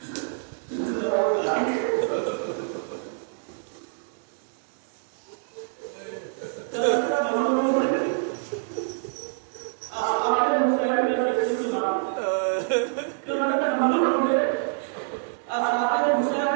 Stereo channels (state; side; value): silent; left; digital silence